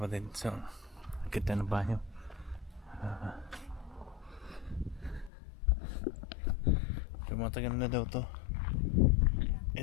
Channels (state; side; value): drops out; right; at 5.3 s